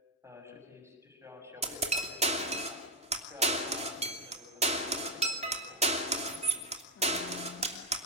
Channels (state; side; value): normal; both; correlation 0.02